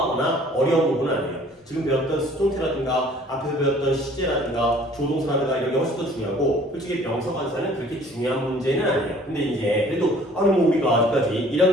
어려운 부분은 아니에요. 지금 배웠던 수동태라든가 앞에서 배웠던 시제라든가 조동사라든가 이런 게 훨씬 더 중요하고 솔직히 명사 관사는 그렇게 중요한 문제는 아니에요. 근데 이제 그래도 아니 뭐 우리가 아직까지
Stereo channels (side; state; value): both; normal; correlation 0.54